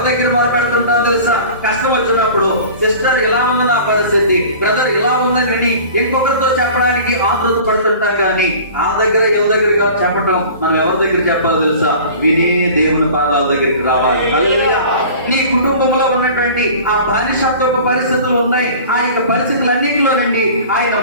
దగ్గర మొరపెడుతుంటాం తెలుసా? కష్టం వచ్చినప్పుడు సిస్టర్ ఇలా ఉంది నా పరిస్థితి, బ్రదర్ ఇలా ఉందని ఇంకొకరితో చెప్పడానికి ఆతృత పడుతుంటాం. కానీ ఆ దగ్గర ఎవరి దగ్గరగా చెప్పటం మనం ఎవరి దగ్గర చెప్పాలి తెలుసా? వినే దేవుని పాదాల దగ్గరికి రావాలి. హల్లెలూయా. నీ కుటుంబంలో ఉన్నటువంటి ఆ బానిసత్వపు పరిస్థితులు ఉన్నాయి. ఆ యొక్క పరిస్థితులన్నింటిలో నుండి ఆయన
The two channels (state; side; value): inverted; both; correlation -0.42